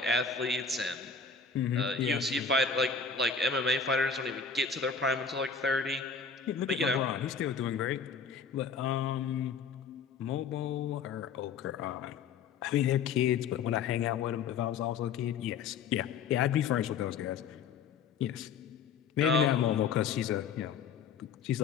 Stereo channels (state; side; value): quieter; right; 5.7 dB